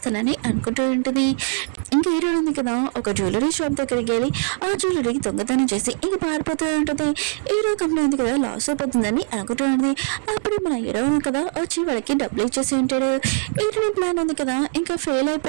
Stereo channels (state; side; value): silent; left; digital silence